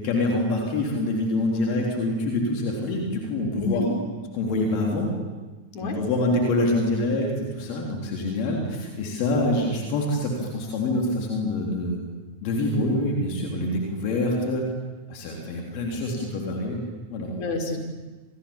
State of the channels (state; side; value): late; right; 9.3 ms